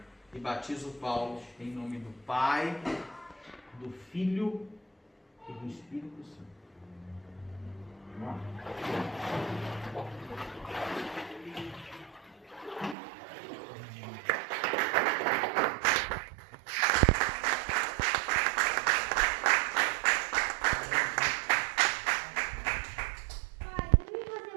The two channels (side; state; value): left; drops out; at 13.0 s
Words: E batizo o Paulo em nome do Pai, do Filho e do Espírito Santo. Vamos lá. Pai, também você